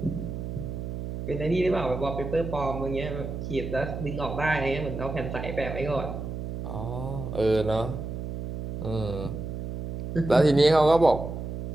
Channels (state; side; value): noise; right; hum, 6 dB below the sound